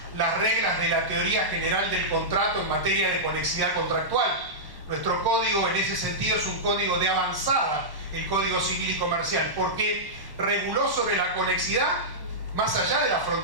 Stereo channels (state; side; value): late; left; 1.1 ms